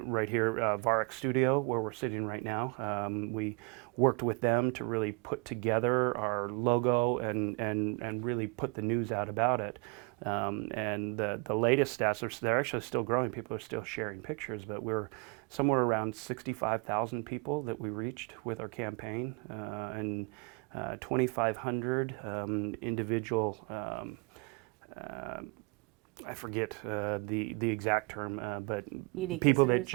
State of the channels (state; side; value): quieter; left; 29.8 dB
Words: here, Varek Studio, where we're sitting right now. We worked with them to really put together our logo and really put the news out about it. And the latest stats, they're actually still growing. People are still sharing pictures, but we're somewhere around 65,000 people that we reached with our campaign, and 2,500 individual, I forget the exact term, but unique people that